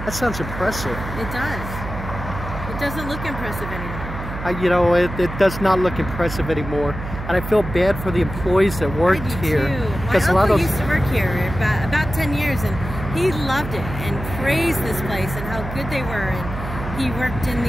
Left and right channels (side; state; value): right; noise; hum, 8 dB below the sound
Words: That sounds impressive. It does. It doesn't look impressive anymore. You know, it does not look impressive anymore, and I feel bad for the employees that worked here. Because my uncle used to work here about 10 years, and he loved it and praised this place and how good they were. And he worked in